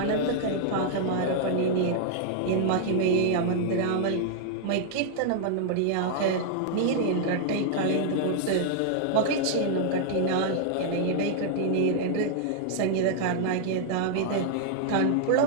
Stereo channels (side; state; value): both; different; correlation -0.01